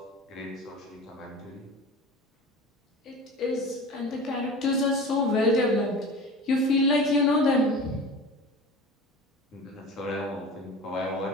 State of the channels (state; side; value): normal; both; correlation 0.35